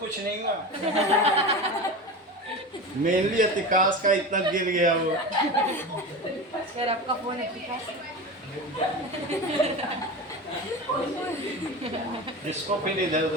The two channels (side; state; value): both; normal; correlation 0.27